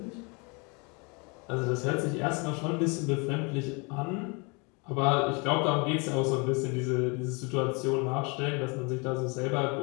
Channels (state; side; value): quieter; right; 31.0 dB